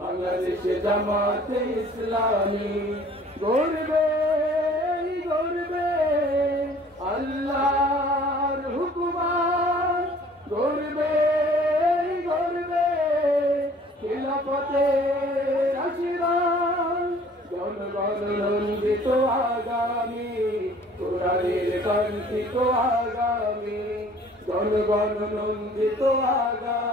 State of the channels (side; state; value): both; normal; correlation 0.53